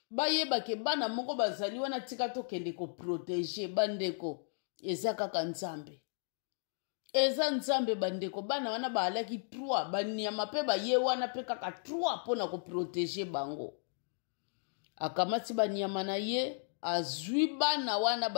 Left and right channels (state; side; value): silent; right; digital silence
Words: bayebake bana moko bazali wana tika tokende koprotege bandeko eza kaka nzambe. Eza nzambe bandeko bana wana baalaki 3 banyama pe baye wana pe kaka 3 pona koprotege bango. Akamati banyama na ye azwi bana wana